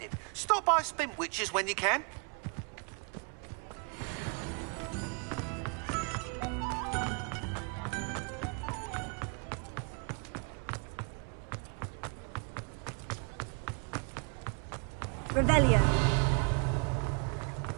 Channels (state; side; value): quieter; left; 37.1 dB